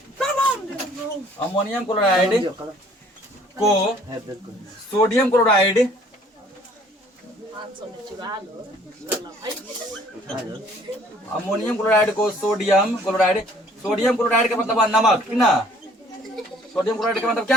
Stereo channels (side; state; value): both; normal; correlation 0.56